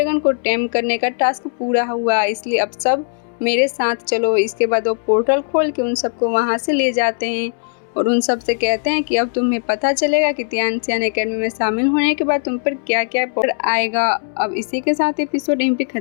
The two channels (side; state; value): right; silent; 67 dB below the other